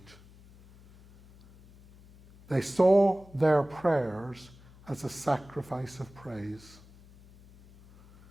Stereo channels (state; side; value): noise; left; hum, 24 dB below the sound